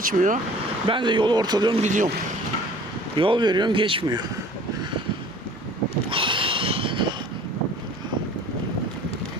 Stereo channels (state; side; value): normal; both; correlation 0.48